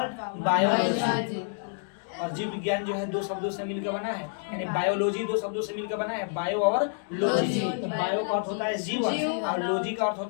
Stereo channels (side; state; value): right; silent; digital silence